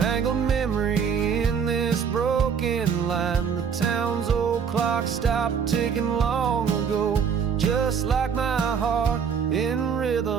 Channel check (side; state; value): left; quieter; 6.8 dB